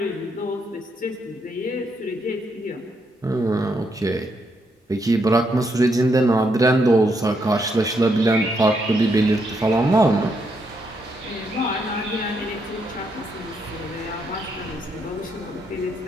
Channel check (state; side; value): normal; both; correlation 0.77